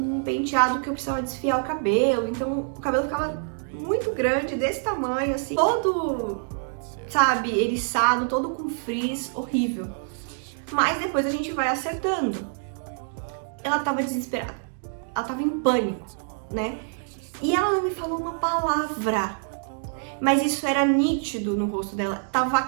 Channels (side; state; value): left; silent; digital silence